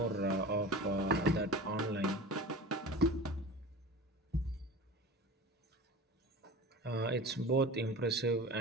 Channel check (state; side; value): normal; both; correlation 0.34